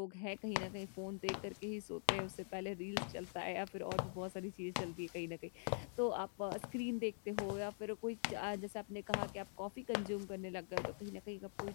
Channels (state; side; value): silent; right; digital silence